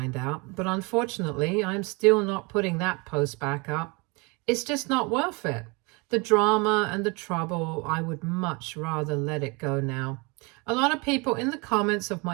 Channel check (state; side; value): quieter; left; 28.7 dB